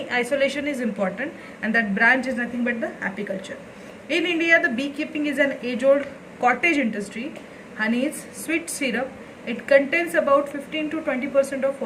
isolation is important, and that branch is nothing but the apiculture. In India, the beekeeping is an age-old cottage industry. Honey is sweet syrup. It contains about 15 to 20% of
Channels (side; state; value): both; identical; correlation 1.00